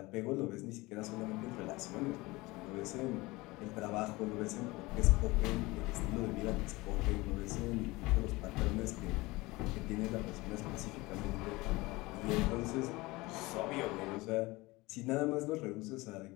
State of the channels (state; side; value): quieter; right; 21.8 dB